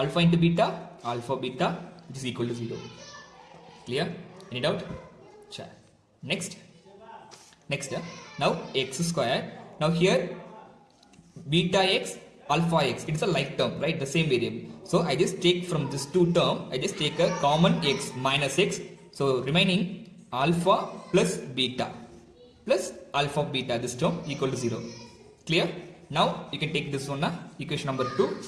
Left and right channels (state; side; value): identical; both; correlation 1.00